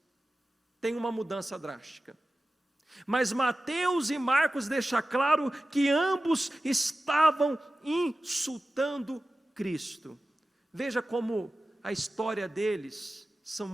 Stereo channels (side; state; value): both; normal; correlation 0.95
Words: tem uma mudança drástica, mas Mateus e Marcos deixam claro que ambos estavam insultando Cristo. Veja como a história deles são